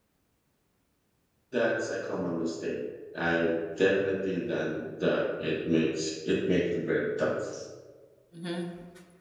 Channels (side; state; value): both; identical; correlation 1.00